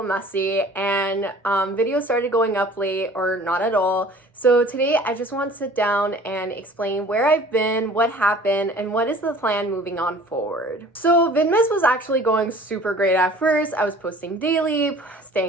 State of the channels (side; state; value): both; normal; correlation 0.48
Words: messy and videos started going up late or not at all. So today I just want to sit down and explain where I've been, what happened, and what is the plan moving on forward. So Vidmas was actually going super great at first. I was posting daily,